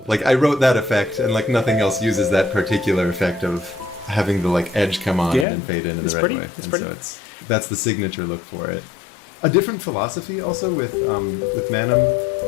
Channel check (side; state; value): right; drops out; at 5.5 s